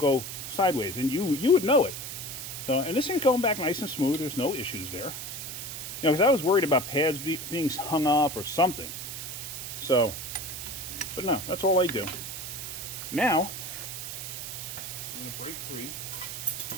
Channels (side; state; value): right; noise; hiss, 7 dB below the sound